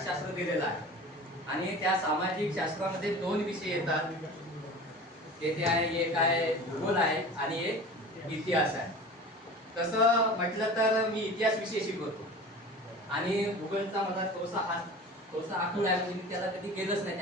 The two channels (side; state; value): both; normal; correlation 0.37